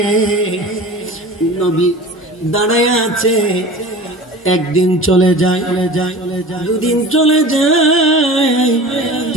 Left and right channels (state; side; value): normal; both; correlation 0.37